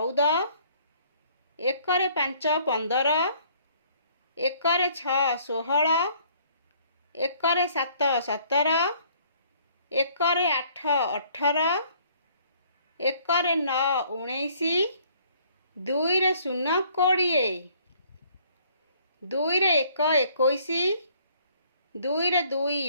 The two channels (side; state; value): both; inverted; correlation -0.61